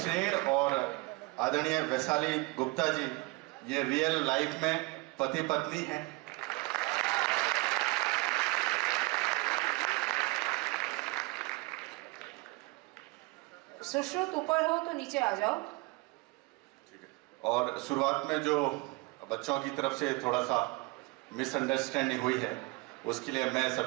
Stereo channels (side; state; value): left; quieter; 24.8 dB